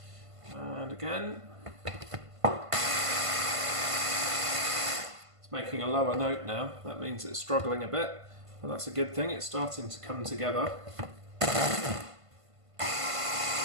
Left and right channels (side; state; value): left; late; 1.5 ms